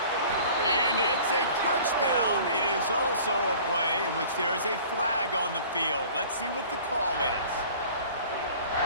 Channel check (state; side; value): inverted; both; correlation -0.47